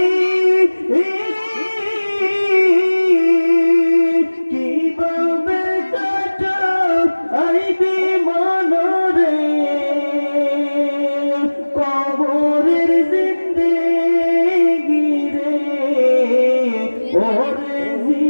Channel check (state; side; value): inverted; both; correlation -1.00